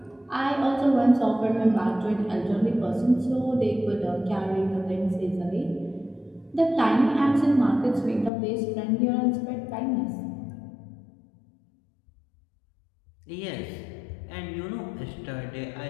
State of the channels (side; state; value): right; drops out; at 8.3 s